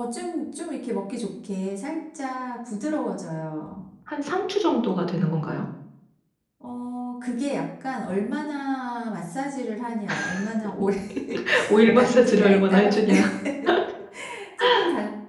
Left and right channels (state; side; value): identical; both; correlation 1.00